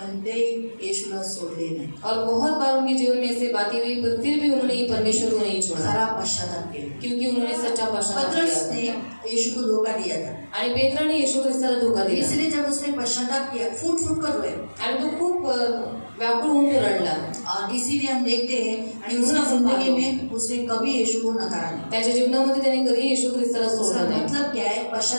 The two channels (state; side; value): inverted; both; correlation -1.00